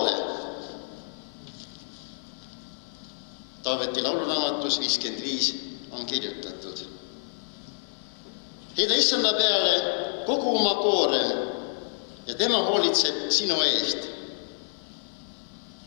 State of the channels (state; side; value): silent; right; digital silence